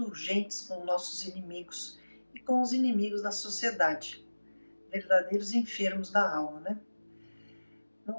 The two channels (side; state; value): both; inverted; correlation -1.00